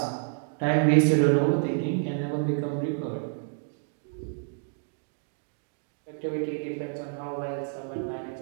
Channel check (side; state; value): left; silent; 59 dB below the other